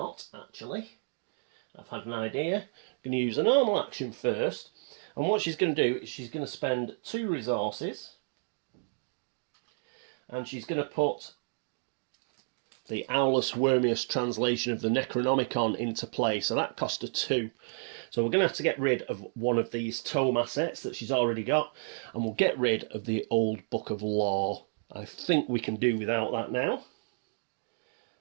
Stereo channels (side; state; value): left; silent; 57 dB below the other